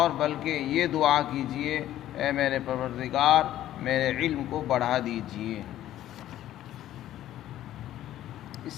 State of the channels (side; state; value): right; quieter; 13.0 dB